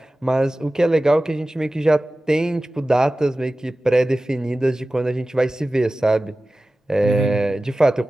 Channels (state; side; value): normal; both; correlation 0.96